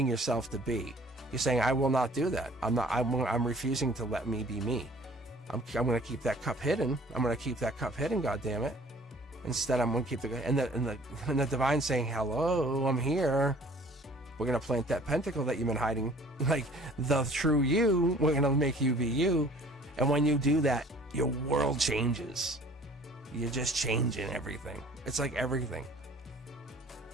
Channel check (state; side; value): normal; both; correlation 0.52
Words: yourself to be. You're saying, I will not do that. I'm refusing to let me be me. I'm going to keep that cup hidden. I'm going to keep that cup hidden, goddammit. Instead, I'm going to keep and the divine saying, hello, I'm here. We're going to plant that pentacle that you've been hiding. Like, the true you, we're going to make you be you. And when you do that, your world changes. You're just changing everything. It's like everything.